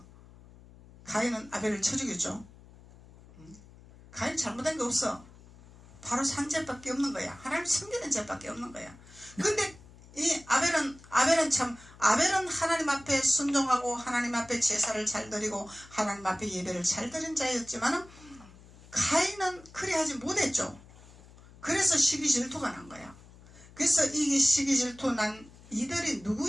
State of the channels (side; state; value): left; noise; hum, 22 dB below the sound